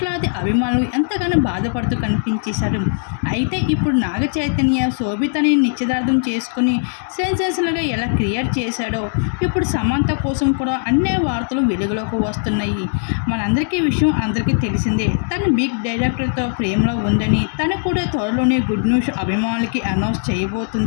అభిమానులు ఎంతగానో బాధపడుతూ కనిపించేశారు. అయితే ఇప్పుడు నాగ చైతన్య శోభితని నిశ్చితార్థం చేసుకుని సెన్సేషనల్గా ఎలా క్రియేట్ చేశాడో ఇప్పుడు సమంత కోసం కూడా అన్ని వార్తలు వెలుగులోకి వస్తున్నాయి. మనందరికీ విషయం అందరికీ తెలిసిందే. తను బిగ్ డైరెక్టర్తో ప్రేమలో ఉందని, తను కూడా త్వరలోనే గుడ్ న్యూస్ అభిమానులకి అనౌన్స్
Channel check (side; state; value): right; silent; digital silence